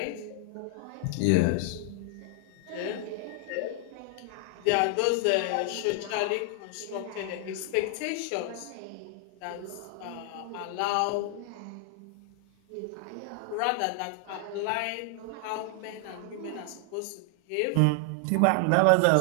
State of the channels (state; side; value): different; both; correlation 0.00